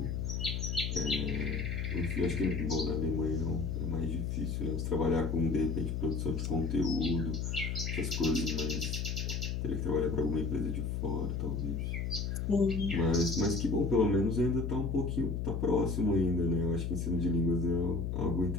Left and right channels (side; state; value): left; noise; hum, 1 dB below the sound